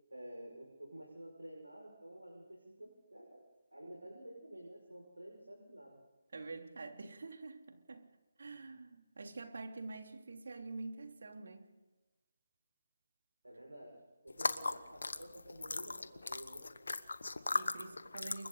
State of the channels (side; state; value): both; inverted; correlation -0.95